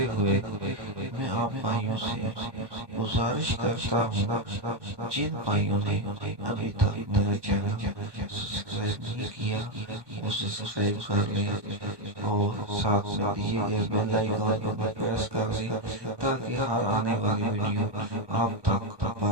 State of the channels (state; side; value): late; left; 1.2 ms